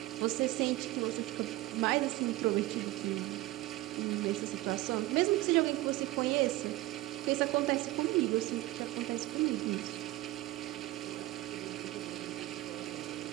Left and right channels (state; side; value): quieter; left; 17.6 dB